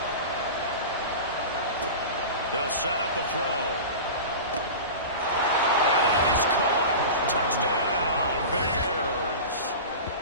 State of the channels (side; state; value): both; inverted; correlation -0.30